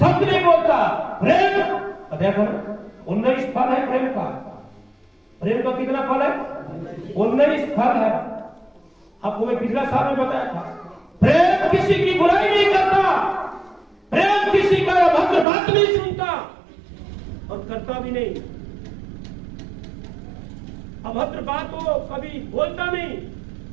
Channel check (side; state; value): left; drops out; at 15.5 s